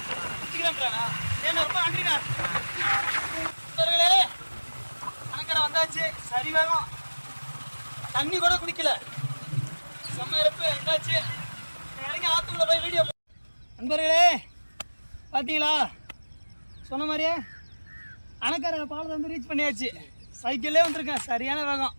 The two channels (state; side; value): inverted; both; correlation -1.00